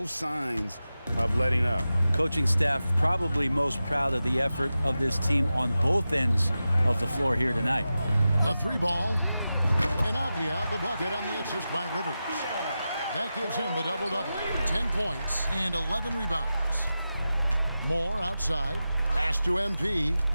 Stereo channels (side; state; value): both; inverted; correlation -0.93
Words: signs of letting up. Coaching staff probably most proud of the effort of this team on both ends of the floor here tonight. The 3 ball. And Avdia the bucket on the assist by Rivers. That gives him the double-double. 10 points and 11 rebounds. Moore outside. Pass to MP.